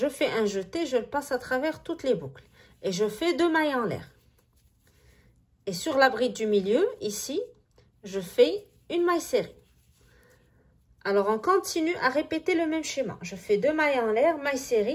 fais un jeté, je le passe à travers toutes les boucles. Et je fais 2 mailles en l'air. Et sur la bride du milieu, ici, je fais une maille serrée. Alors, on continue à répéter le même schéma. Je fais 2 mailles en l'air, maille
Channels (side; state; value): both; identical; correlation 1.00